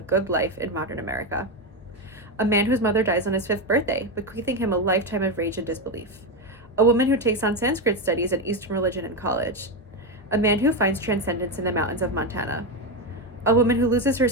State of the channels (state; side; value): normal; both; correlation 0.11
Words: good life in modern America. A man whose mother dies on his 5th birthday, bequeathing him a lifetime of rage and disbelief. A woman who takes on Sanskrit studies and Eastern religion in college. A man who finds transcendence in the mountains of Montana. A woman who loses